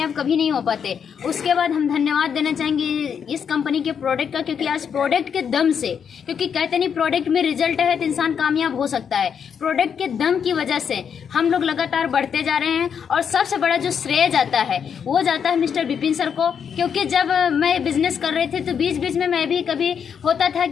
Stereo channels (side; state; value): right; quieter; 7.3 dB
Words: कभी नहीं हो पाते। उसके बाद हम धन्यवाद देना चाहेंगे इस कंपनी के प्रोडक्ट का, क्योंकि आज प्रोडक्ट के दम से, क्योंकि कहते नहीं प्रोडक्ट में रिजल्ट है तो इंसान कामयाब हो सकता है, प्रोडक्ट के दम की वजह से हम लोग लगातार बढ़ते जा रहे हैं। और सबसे बड़ा जो श्रेय जाता है वो जाता है मिस्टर विपिन सर को, क्योंकि जब मैं बिजनेस कर रही थी तो बीच में मैं भी कभी होता था